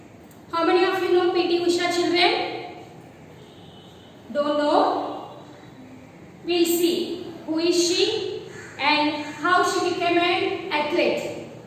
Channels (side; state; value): both; identical; correlation 1.00